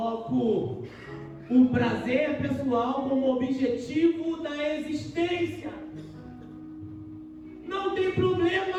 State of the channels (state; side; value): identical; both; correlation 1.00